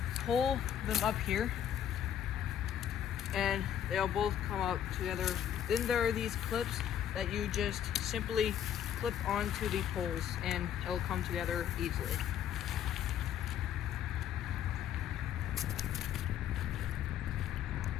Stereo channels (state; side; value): quieter; right; 9.8 dB